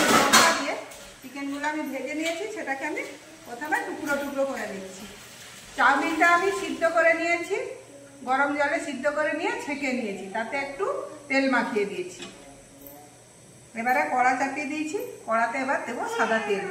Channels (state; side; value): identical; both; correlation 1.00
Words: লঙ্কা দিয়ে চিকেনগুলো আমি ভেজে নিয়েছি। সেটাকে আমি প্রথমে টুকরো টুকরো করে নিচ্ছি। চাউমিনটা আমি সিদ্ধ করে নিয়েছি, গরম জলে সিদ্ধ করে নিয়ে ছেঁকে নিয়েছি, তাতে একটু তেল মাখিয়ে দিয়েছি। এবারে কড়া চাপিয়ে দিয়েছি, কড়াতে এবার দেবো সাদা তেল।